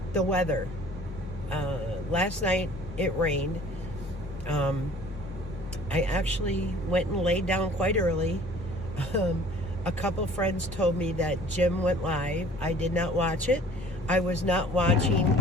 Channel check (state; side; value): normal; both; correlation 0.51